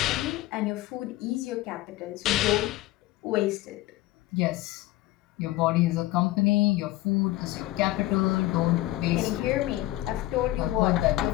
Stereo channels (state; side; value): quieter; right; 16.8 dB